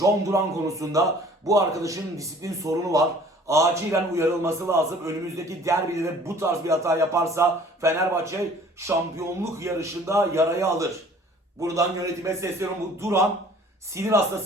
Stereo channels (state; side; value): normal; both; correlation 0.52